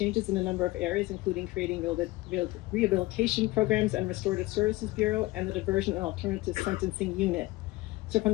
in a number of areas, including creating rehabilitation programs and restorative services bureau and the diversion and alternative sentencing unit. So from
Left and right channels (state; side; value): quieter; right; 19.7 dB